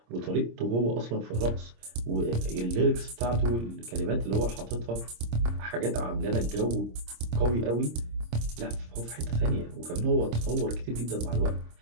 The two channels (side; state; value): left; late; 26 ms